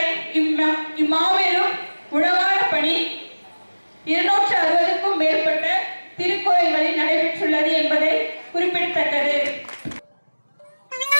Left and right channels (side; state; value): both; inverted; correlation -1.00